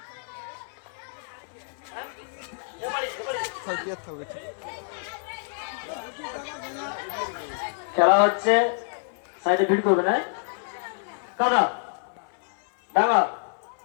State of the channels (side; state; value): right; silent; 58 dB below the other